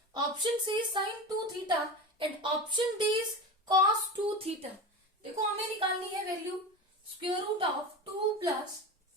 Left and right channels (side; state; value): both; normal; correlation 0.26